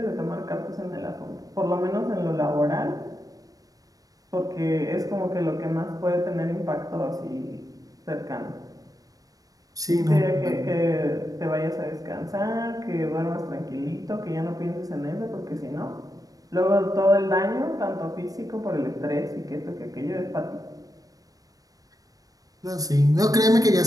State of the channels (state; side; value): late; left; 0.18 ms